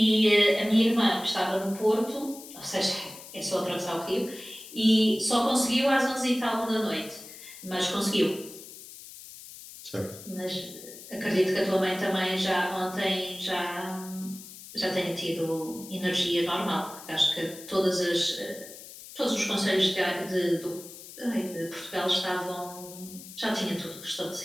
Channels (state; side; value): noise; left; hiss, 15 dB below the sound